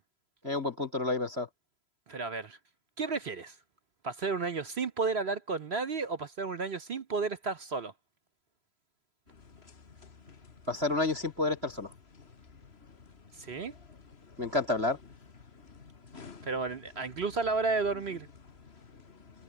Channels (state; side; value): late; left; 3.0 ms